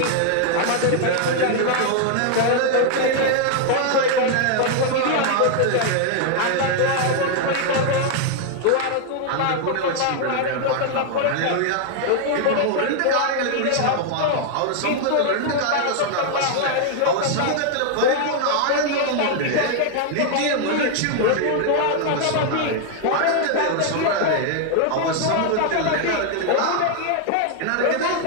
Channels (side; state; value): both; different; correlation 0.00